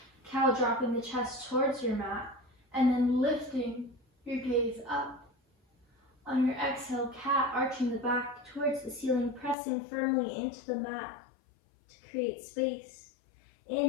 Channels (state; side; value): drops out; right; at 9.6 s